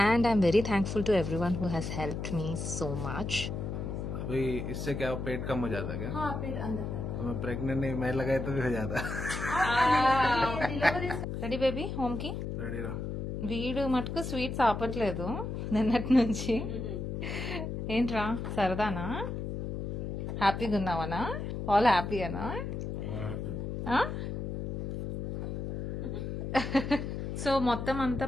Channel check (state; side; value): noise; left; hum, 4 dB below the sound